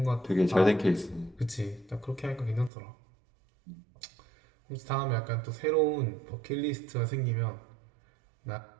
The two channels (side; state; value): left; drops out; at 2.7 s